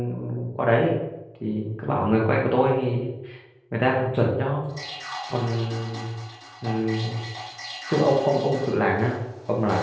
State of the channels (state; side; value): identical; both; correlation 1.00